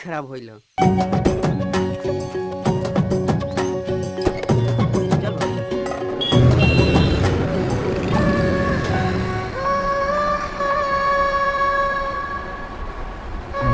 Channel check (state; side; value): identical; both; correlation 1.00